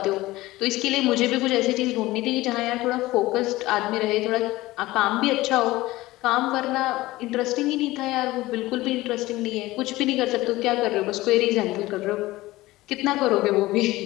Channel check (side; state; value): right; quieter; 18.4 dB